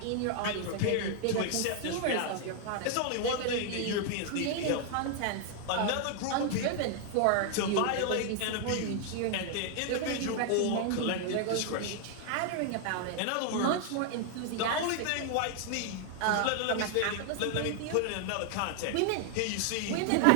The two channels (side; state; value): both; different; correlation 0.00